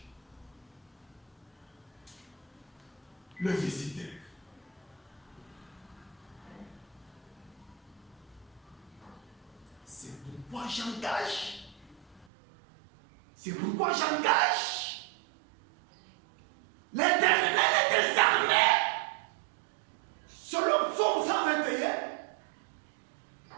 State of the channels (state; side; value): drops out; left; at 12.2 s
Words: le visitaient. C'est pourquoi j'engage. C'est pourquoi j'engage l'Éternel des armées. Selon Psaume 121,